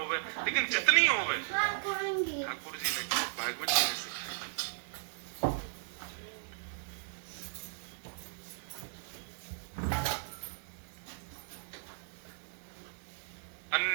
लेकिन जितनी होवे ठाकुर जी ने, भागवत जी ने सिखाई।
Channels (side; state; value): left; silent; 54 dB below the other